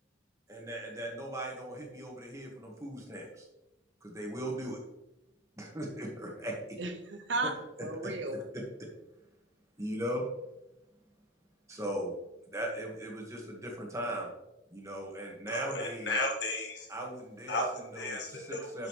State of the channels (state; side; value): normal; both; correlation 0.17